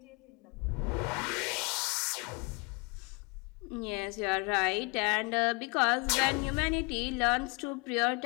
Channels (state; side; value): quieter; right; 29.5 dB